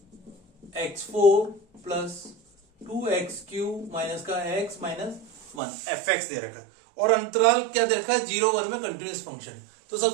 x4 प्लस 2x³ माइनस का x माइनस 1 fx दे रखा है, और अंतराल क्या दे रखा है? 0-1 में कंटिन्यूअस फंक्शन है। तो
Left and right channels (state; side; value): drops out; left; at 5.6 s